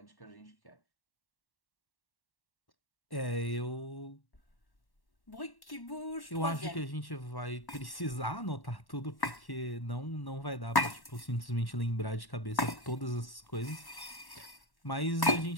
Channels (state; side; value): late; right; 1.1 ms